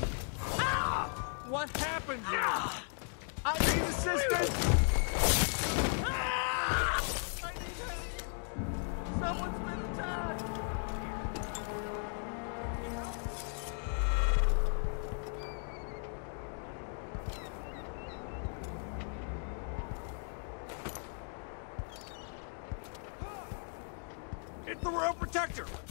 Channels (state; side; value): silent; right; 53 dB below the other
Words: What happened here? I need assistance! Someone's not feeling well! I need help! Someone's been attacked! It's the Royal Protector!